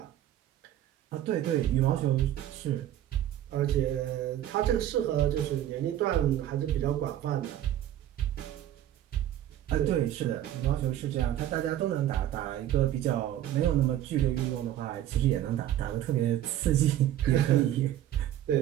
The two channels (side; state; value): left; quieter; 12.1 dB